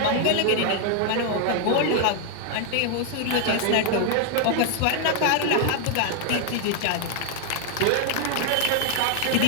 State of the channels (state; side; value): different; both; correlation 0.00